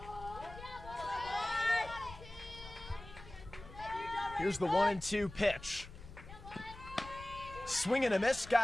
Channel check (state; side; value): noise; left; rumble, 15 dB below the sound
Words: Here's the 1-2 pitch. Swing and a miss,